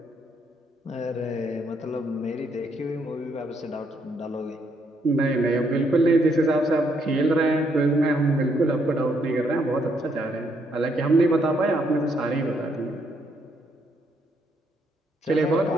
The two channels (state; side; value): normal; both; correlation 0.73